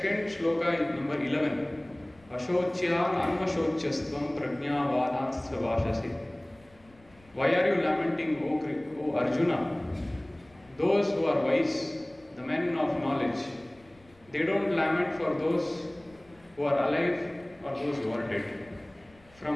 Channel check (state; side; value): noise; left; rumble, 29 dB below the sound